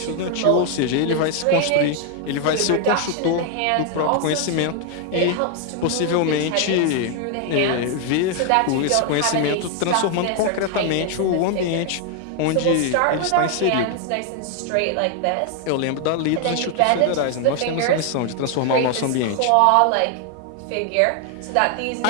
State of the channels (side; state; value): both; different; correlation 0.01